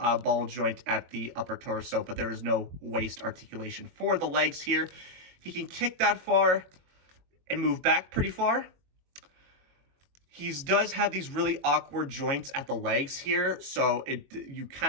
joint at the upper torso, but there is no waist articulation for the legs here. He can kick that far and move back pretty far. He does have these really awkward joints at the legs here, so you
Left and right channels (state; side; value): late; left; 22 ms